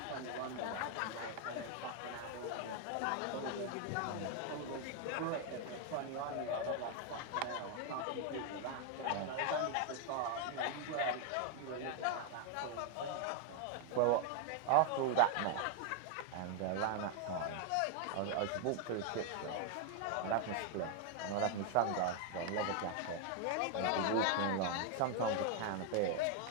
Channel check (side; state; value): both; different; correlation 0.00